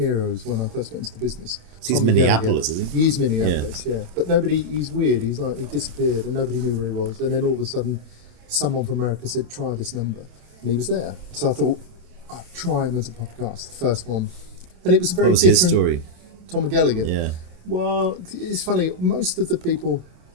when I first got into the business. He's Minneapolis, isn't he? He's Minneapolis, yeah. But he's weird. He disappeared and nobody knew where he was. And then all of a sudden, someone from America said, try this number. And he was there. So I thought, I'd try him as a podcast, the first one. And it was a very different... What was his story? Tom McGallagher? Yeah. Well, it's funny. Most of the people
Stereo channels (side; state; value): left; late; 27 ms